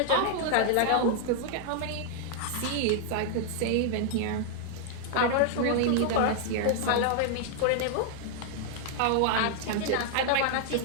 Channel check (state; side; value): different; both; correlation 0.00